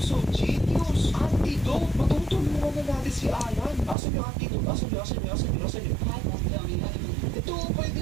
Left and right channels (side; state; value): left; drops out; at 4.0 s